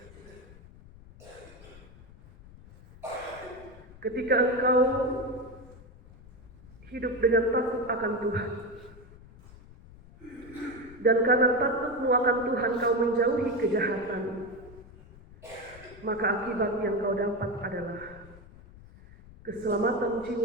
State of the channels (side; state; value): left; noise; rumble, 20 dB below the sound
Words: ketika engkau hidup dengan takut akan Tuhan, dan karena takutmu akan Tuhan kau menjauhi kejahatan, maka akibat yang kau dapat adalah keselamatan